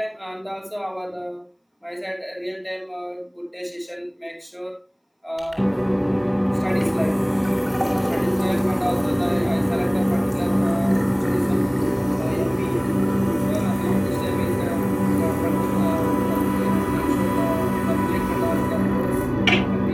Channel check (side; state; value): both; identical; correlation 1.00